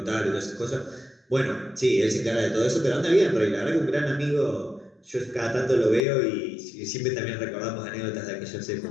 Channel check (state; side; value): drops out; right; at 6.1 s